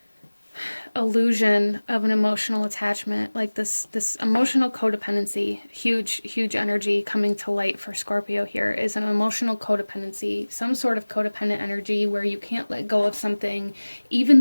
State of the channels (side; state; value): both; inverted; correlation -1.00